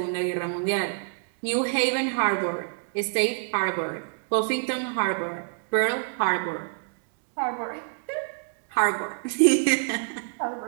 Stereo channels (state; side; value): silent; left; digital silence